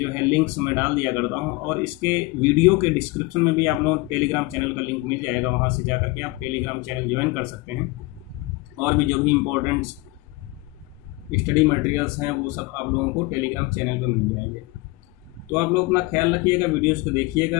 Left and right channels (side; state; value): right; quieter; 21.9 dB